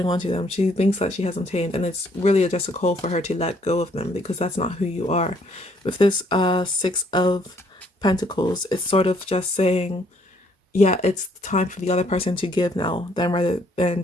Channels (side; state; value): both; normal; correlation 0.66